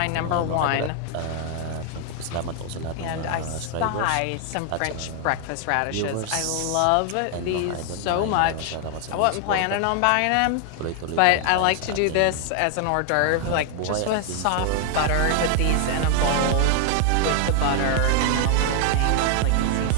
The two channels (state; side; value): different; both; correlation 0.00